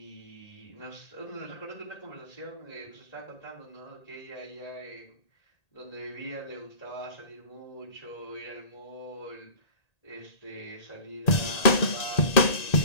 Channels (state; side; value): late; right; 1.8 ms